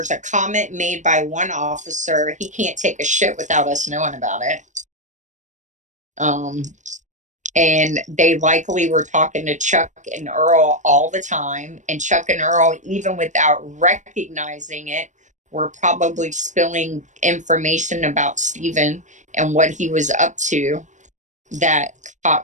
a comment made by one officer, he can't take a shit without us knowing about it. And they likely were talking to Chuck and Earl all the time. And Chuck and Earl, even without recognizing it, were probably spilling information about Steven and what he was up to that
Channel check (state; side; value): late; left; 0.35 ms